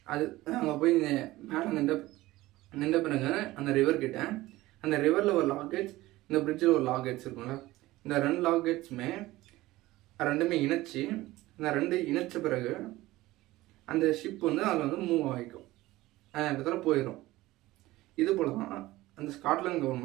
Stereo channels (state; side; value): quieter; left; 17.9 dB